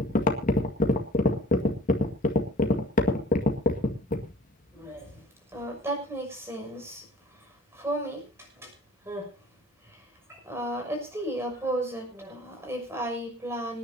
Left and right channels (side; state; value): both; normal; correlation 0.50